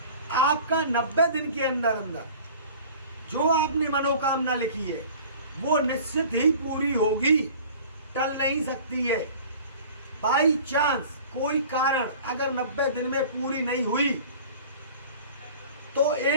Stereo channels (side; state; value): both; inverted; correlation -0.44